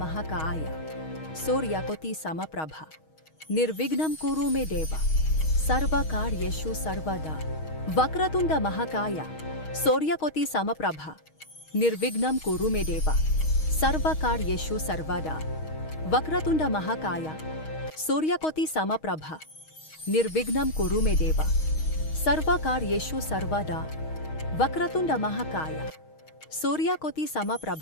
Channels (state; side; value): late; right; 6.4 ms